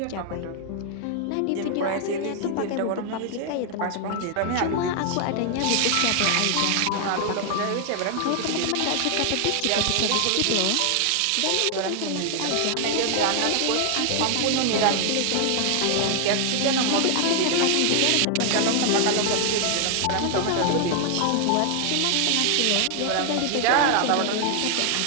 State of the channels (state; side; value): different; both; correlation 0.00